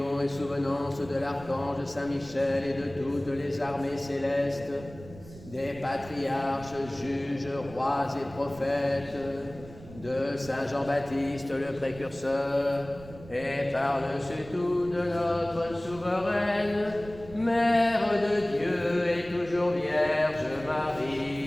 et souvenance de l'archange Saint-Michel et de toutes les armées célestes, des patriarches, juges, rois et prophètes, de Saint Jean-Baptiste le précurseur, et par-dessus tout de notre souveraine, Mère de Dieu et toujours Vierge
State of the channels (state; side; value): noise; right; rumble, 17 dB below the sound